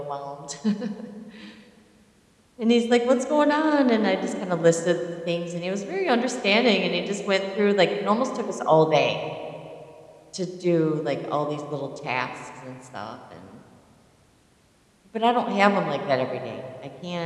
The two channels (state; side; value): identical; both; correlation 1.00